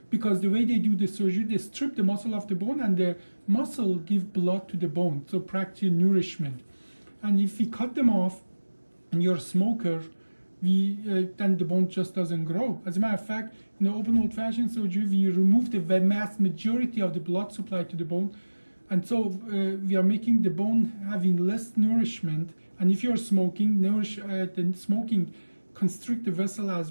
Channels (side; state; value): both; inverted; correlation -1.00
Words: Because the way they do the surgery, they strip the muscle of the bone and the muscle give blood to the bone, so practically nourishment. And if we cut them off and you're a smoker, then the bone just doesn't grow. As a matter of fact, in the open old-fashioned surgery, we remove the vast majority of the blood supply to the bone. And so we are making the bone having less nourishment. And if you're smoking, constrict the vessel